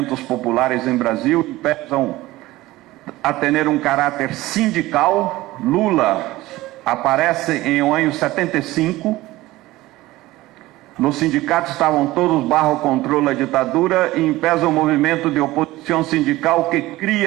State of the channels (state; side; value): quieter; left; 18.0 dB